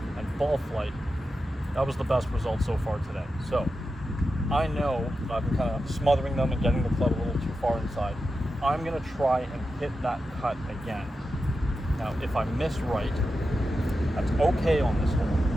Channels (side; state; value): both; normal; correlation 0.90